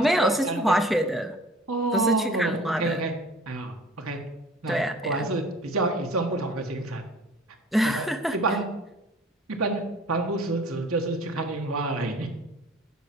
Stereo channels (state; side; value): normal; both; correlation 0.47